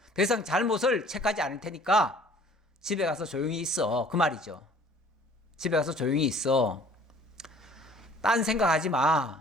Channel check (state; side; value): normal; both; correlation 0.53